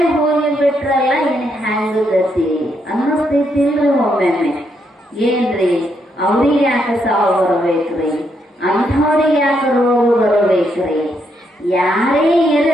ಹೋಗಿಬಿಟ್ರಲ್ಲ, ಇನ್ ಹ್ಯಾಂಗ ಗತಿ ಅನ್ನಿಸ್ತಿಲ್ರಿ ಒಮ್ಮೊಮ್ಮೆ. ಏನ್ರಿ ಅವ್ರಿಗೆ ಯಾಕೆ ಸಾವು ಬರಬೇಕ್ರಿ, ಅಂಥವ್ರಿಗೆ ಯಾಕೆ ರೋಗ ಬರಬೇಕ್ರಿ? ಯಾರೇ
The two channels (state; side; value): normal; both; correlation 0.77